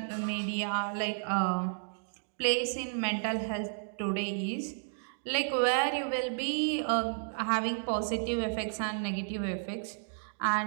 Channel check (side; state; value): left; silent; digital silence